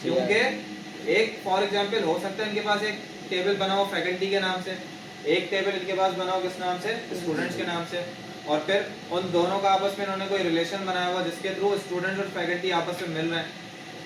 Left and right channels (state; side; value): identical; both; correlation 1.00